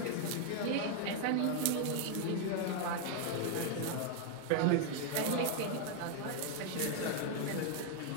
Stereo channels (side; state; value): both; different; correlation 0.00